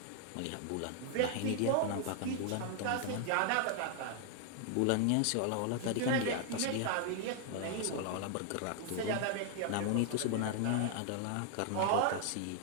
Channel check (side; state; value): both; different; correlation 0.00